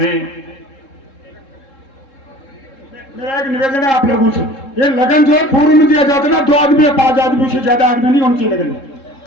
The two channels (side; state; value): right; late; 3.7 ms